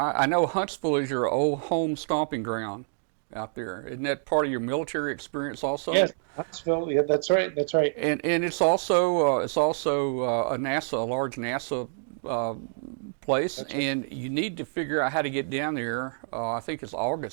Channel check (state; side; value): silent; left; digital silence